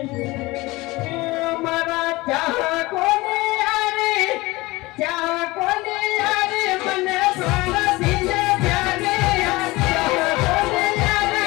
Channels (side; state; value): right; quieter; 21.2 dB